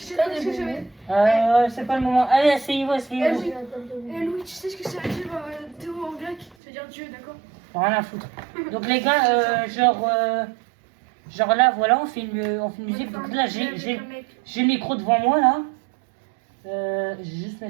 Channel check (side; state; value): left; drops out; at 6.6 s